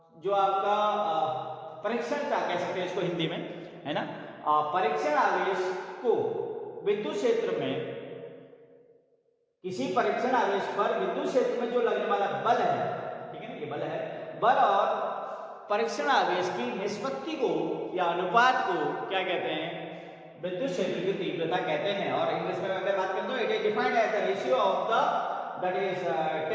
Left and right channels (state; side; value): identical; both; correlation 1.00